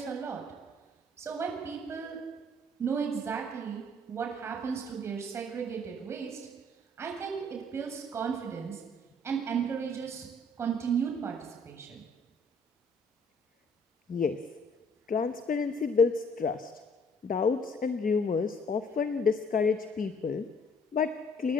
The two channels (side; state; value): both; normal; correlation 0.60